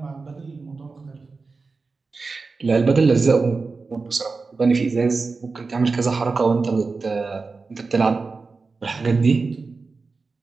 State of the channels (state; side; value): quieter; left; 4.2 dB